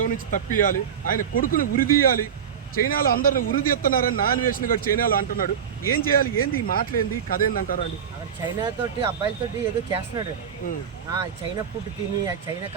నుంచి తప్పియాలి, ఆయన కొడుకుని ఉరిదీయాలి, చైనాలో అందరిని ఉరిదీస్తున్నారని నాన్వేషన్ గారు చైనాలో అంటున్నాడు. ఏం చేయాలి, ఏంది ఈ మాటలేంది, కథ ఏందంటారా అండి? చైనా తోటి అబ్బాయిలతోటి ఏదో చేస్తున్నాడు. చైనా ఫుడ్ తిని, చైనా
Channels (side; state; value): left; quieter; 7.9 dB